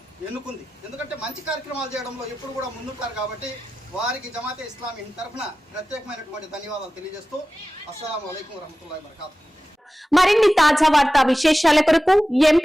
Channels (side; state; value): both; normal; correlation 0.95